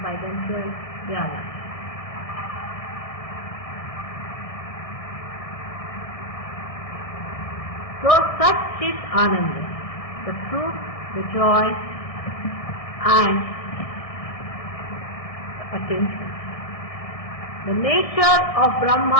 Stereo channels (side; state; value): right; late; 1.6 ms